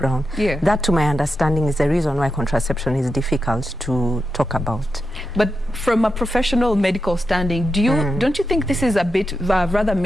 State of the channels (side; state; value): both; normal; correlation 0.88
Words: Yeah. That, to my understanding, is the reason why contraception is difficult to talk about. But from a professional medical standing, don't you think this is a bit rather